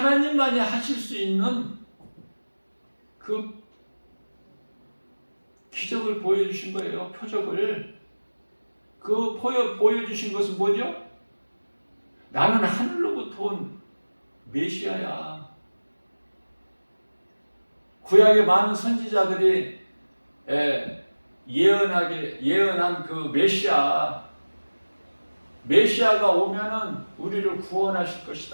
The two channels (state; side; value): inverted; both; correlation -1.00